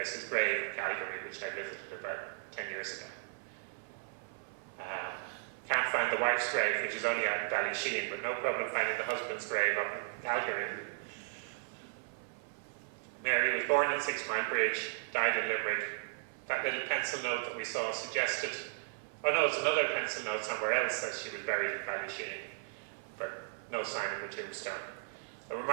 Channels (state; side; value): silent; left; 54 dB below the other